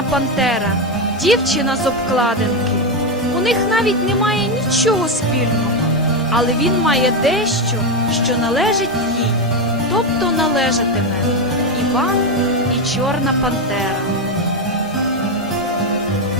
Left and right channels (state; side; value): normal; both; correlation 0.09